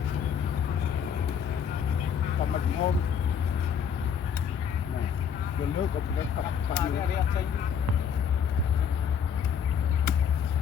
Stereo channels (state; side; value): quieter; right; 7.6 dB